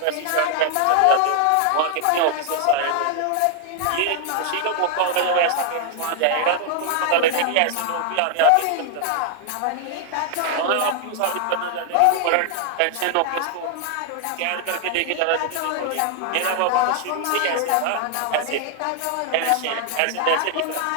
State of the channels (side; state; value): both; different; correlation 0.00